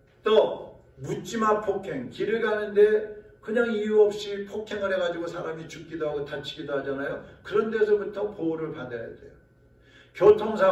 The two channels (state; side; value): identical; both; correlation 1.00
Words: 또 묻지마 폭행, 길을 가는데 그냥 이유 없이 폭행을 해가지고 사람이 죽기도 하고 다치기도 하잖아요. 그런 데서부터 보호를 받아야 돼요.